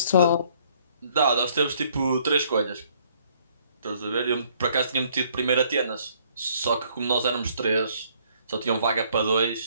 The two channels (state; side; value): inverted; both; correlation -0.64